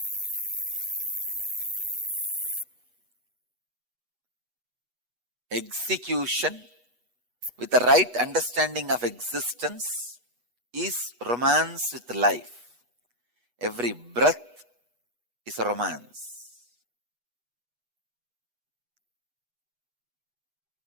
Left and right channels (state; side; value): late; left; 8.2 ms